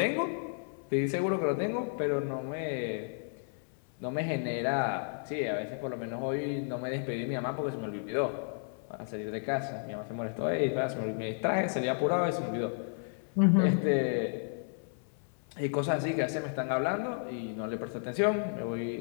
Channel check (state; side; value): silent; right; 56 dB below the other